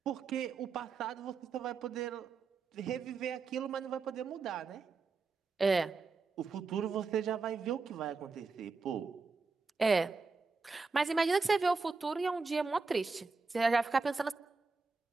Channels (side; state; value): left; quieter; 4.4 dB